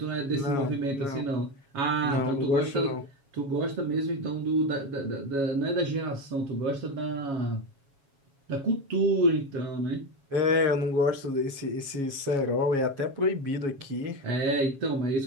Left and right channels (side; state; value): left; late; 7.2 ms